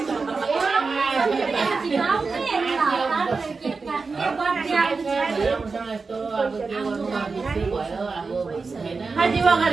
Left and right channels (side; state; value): left; quieter; 4.4 dB